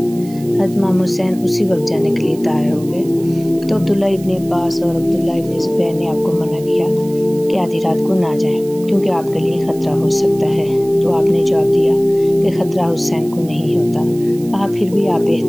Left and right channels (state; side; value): noise; right; hiss, 21 dB below the sound